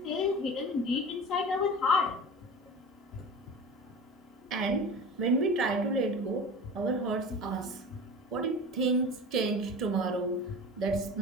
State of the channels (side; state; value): both; normal; correlation 0.34